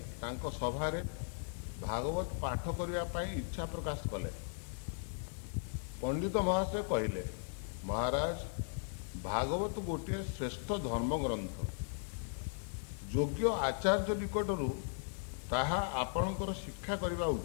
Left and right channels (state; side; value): silent; right; digital silence